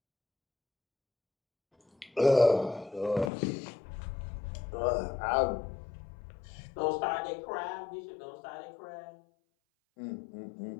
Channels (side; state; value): right; drops out; at 3.3 s